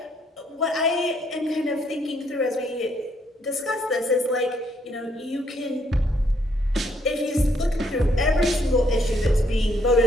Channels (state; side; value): normal; both; correlation 0.71